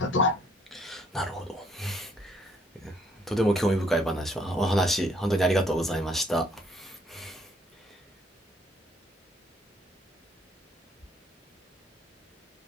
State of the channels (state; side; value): normal; both; correlation 0.66